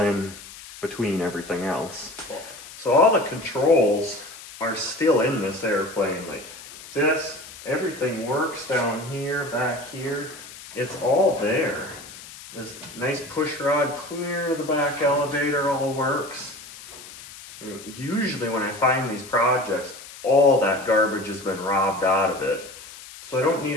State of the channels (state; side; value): noise; left; hiss, 16 dB below the sound